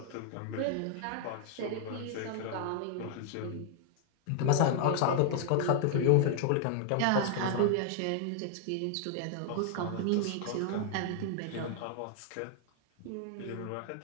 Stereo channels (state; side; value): different; both; correlation 0.00